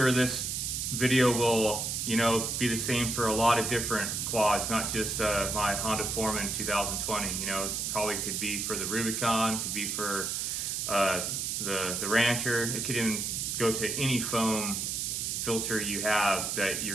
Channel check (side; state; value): right; noise; hiss, 1 dB below the sound